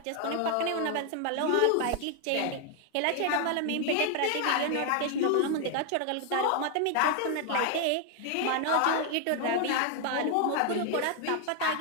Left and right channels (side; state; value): both; different; correlation 0.00